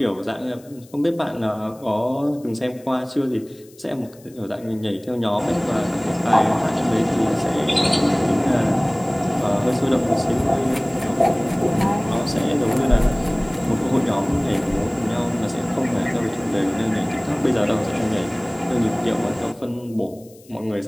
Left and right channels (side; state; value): left; noise; hiss, 26 dB below the sound